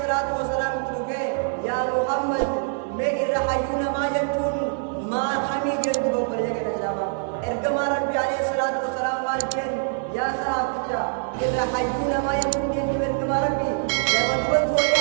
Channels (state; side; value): silent; left; digital silence